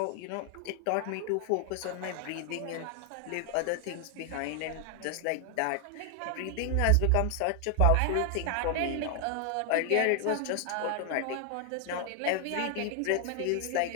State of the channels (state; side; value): different; both; correlation 0.00